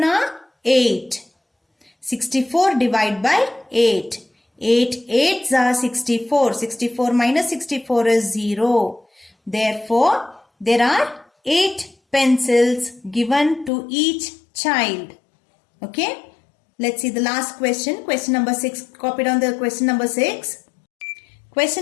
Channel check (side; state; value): right; drops out; at 13.7 s